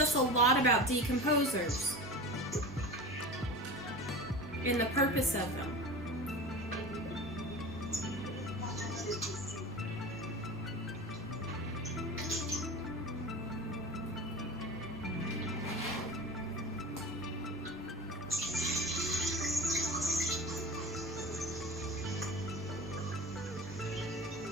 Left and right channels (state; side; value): normal; both; correlation 0.32